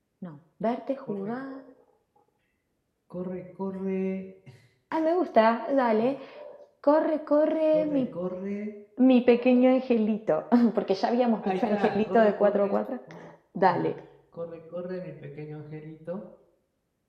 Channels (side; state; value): both; identical; correlation 1.00